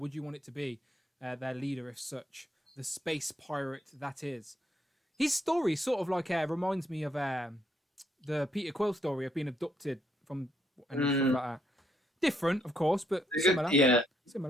you want it to be their leader, if such, the space pirate that is? His story sort of like reminds me of the Peter Quill story of being abducted from and stuff like that. Different, of course, but similar. Yeah,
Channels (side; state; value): both; normal; correlation 0.73